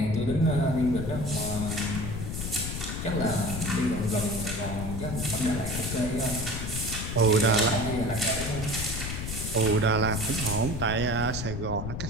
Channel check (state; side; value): noise; left; rumble, 5 dB below the sound